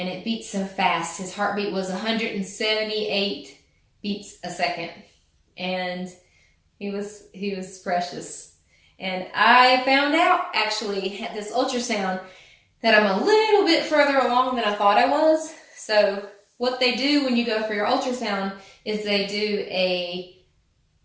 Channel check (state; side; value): identical; both; correlation 1.00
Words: it beat so fast. His heartbeat was 178 beats a second, and he was precious. And I found out actually at this ultrasound that I'm a little bit further along than I thought I was. So what they do when you go for your ultrasound is they do a